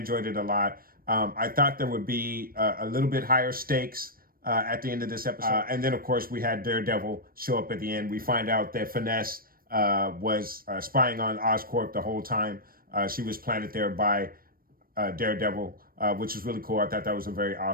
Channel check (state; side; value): late; left; 0.42 ms